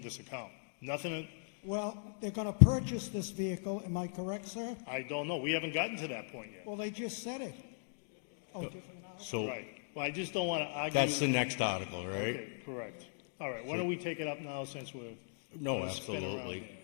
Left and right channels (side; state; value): right; silent; digital silence